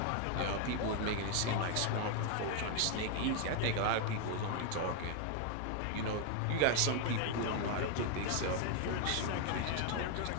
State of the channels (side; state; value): both; different; correlation 0.00